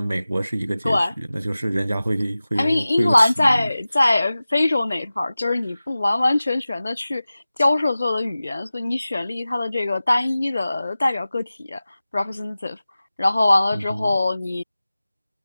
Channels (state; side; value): inverted; both; correlation -0.97